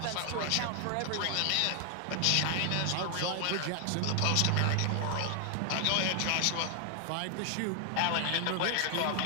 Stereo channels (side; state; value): both; different; correlation 0.00